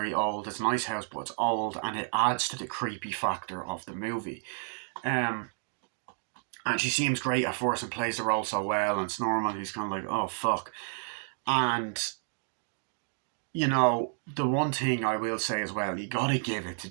old. It's a nice house, but it's old, and it adds to the creepy factor of the movie. And she seems great at first and plays the role so well, and it's normal. He's kind of like, oh fuck. And the one thing I will say as well, you gotta give it to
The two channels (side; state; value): left; silent; 57 dB below the other